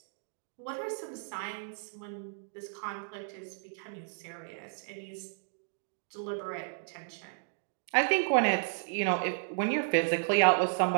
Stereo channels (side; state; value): left; silent; digital silence